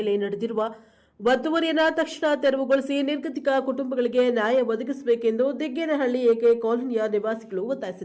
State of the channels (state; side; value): identical; both; correlation 1.00